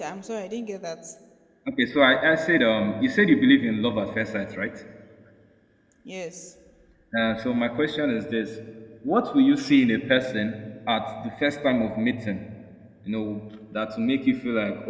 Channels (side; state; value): both; identical; correlation 1.00